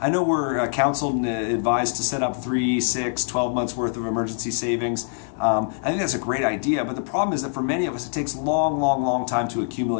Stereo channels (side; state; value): right; silent; digital silence